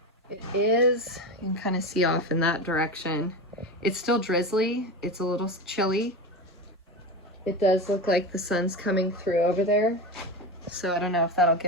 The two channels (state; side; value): normal; both; correlation 0.22